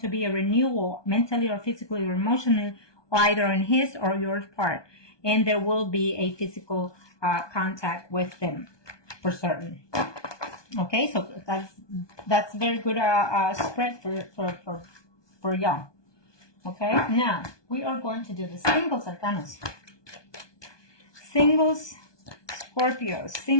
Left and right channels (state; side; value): late; right; 1.2 ms